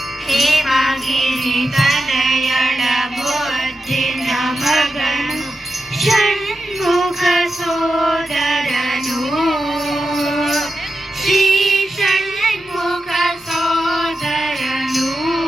ಹೇಮಗಿರಿ ತನಯಳ ಮುದ್ದಿನ ಮಗನು ಷಣ್ಮುಖ ಸೋದರನು ಶ್ರೀ ಷಣ್ಮುಖ ಸೋದರನು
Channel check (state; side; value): normal; both; correlation 0.89